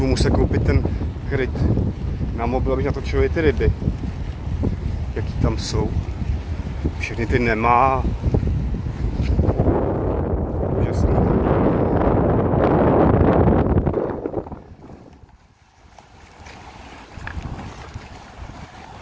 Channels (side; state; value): both; identical; correlation 1.00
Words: muset koupit ten kryt na mobil, abych natočil i ty ryby, jaký tam jsou. Všechny ty nemá. Úžasný.